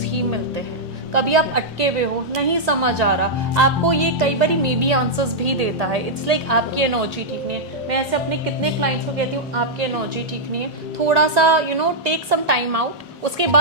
ही मिलते हैं. कभी आप अटके हुए हो, नहीं समझ आ रहा, आपको ये कई बार मे बी आंसर्स भी देता है. इट्स लाइक आपकी एनर्जी ठीक नहीं है. मैं ऐसे अपने कितने क्लाइंट्स को कहती हूँ आपकी एनर्जी ठीक नहीं है, थोड़ा सा टेक सम टाइम आउट, उसके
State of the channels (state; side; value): normal; both; correlation -0.07